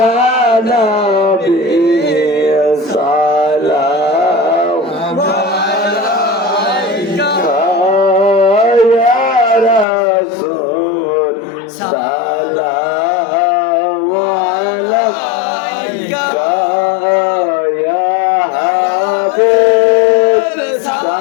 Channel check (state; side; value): drops out; right; at 9.9 s